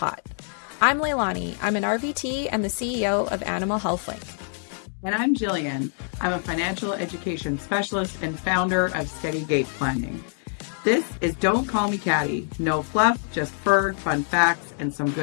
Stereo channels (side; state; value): right; silent; 57 dB below the other